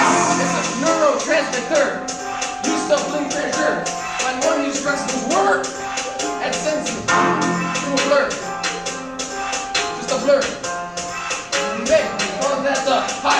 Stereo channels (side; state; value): both; identical; correlation 1.00